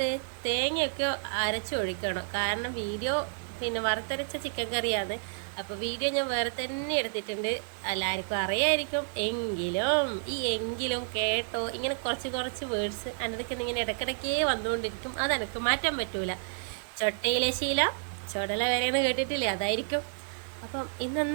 തേങ്ങയൊക്കെ അരച്ചൊഴിക്കണം. കാരണം വീഡിയോ പിന്നെ വറുത്തരച്ച ചിക്കൻ കറിയാണ്. അപ്പോൾ വീഡിയോ ഞാൻ വേറെ തന്നെ എടുത്തിട്ടുണ്ട്. എല്ലാവർക്കും അറിയായിരിക്കും. എങ്കിലും കേട്ടോ, ഇങ്ങനെ കുറച്ച് വേർഡ്സ് എൻ്റെ ഇങ്ങനെ ഇടയ്ക്കിടയ്ക്കേ വന്നുകൊണ്ടിരിക്കും. അതെനിക്ക് മാറ്റാൻ പറ്റൂല. ചൊട്ടയിലെ ശീല ചുടല വരെയെന്ന് കേട്ടിട്ടില്ലേ, അതായിരിക്കും. അപ്പം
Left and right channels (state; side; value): silent; left; 58 dB below the other